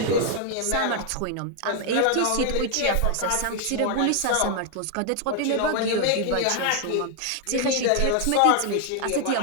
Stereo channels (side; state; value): both; different; correlation 0.00